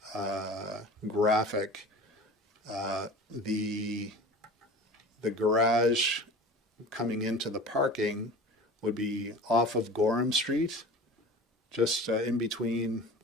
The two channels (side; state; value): both; normal; correlation 0.37